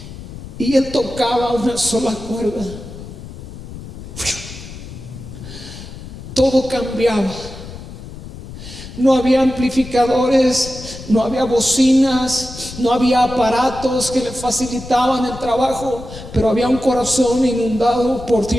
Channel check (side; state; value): left; noise; rumble, 13 dB below the sound